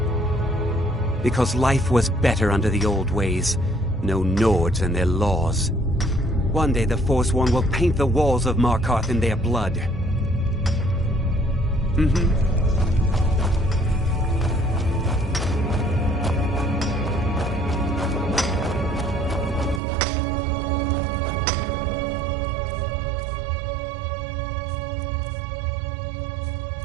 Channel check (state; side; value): drops out; left; at 19.8 s